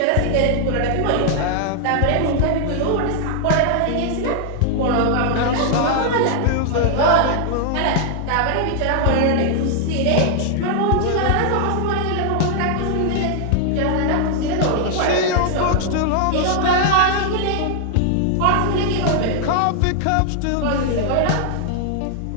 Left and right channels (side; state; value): both; different; correlation 0.00